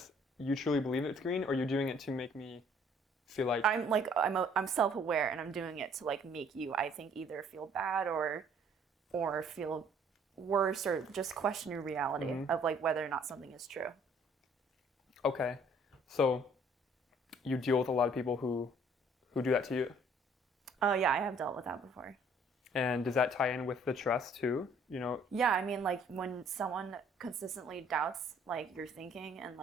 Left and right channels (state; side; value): normal; both; correlation 0.59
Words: you truly believe it's green, or you're doing it to make me feel like I'm self-aware, and I'm doing it to like make you, I think, either feel bad or feel worse, or just question your reality of like whether or not something is true. Okay. So you deal with a lot of people who do that to you. Oh yeah, I have dealt with that before. And does that tie in with the trust too? Yeah, I mean, like when someone consistently doubts like your thinking and